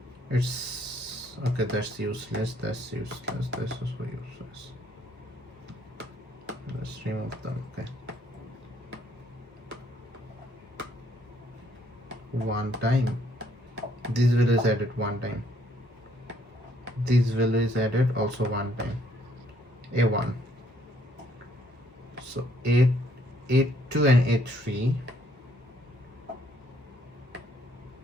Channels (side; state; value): both; normal; correlation 0.67